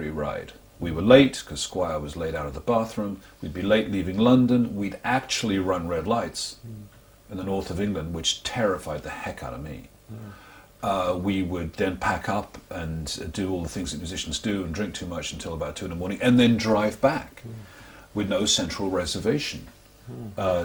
ride. We were late because Squire was late out of the bathroom. We'd be late leaving London. We'd actually run red lights in the north of England, which terrified the heck out of me. We would then pack up and do all the things that musicians do and drink too much until about 2 in the morning, and then drive back with no central reservation.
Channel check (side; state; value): both; identical; correlation 1.00